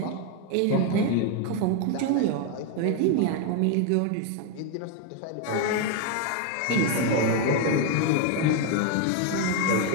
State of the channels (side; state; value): both; different; correlation 0.01